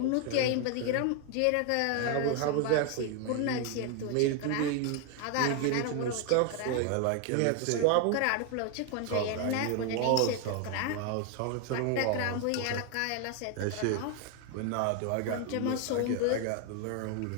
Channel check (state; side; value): different; both; correlation 0.01